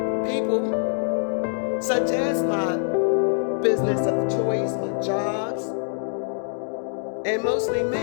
people, such as my business of choice, my jobs, and mostly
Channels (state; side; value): silent; right; digital silence